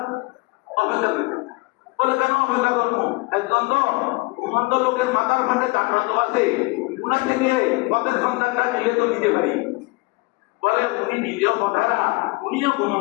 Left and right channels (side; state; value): right; quieter; 25.0 dB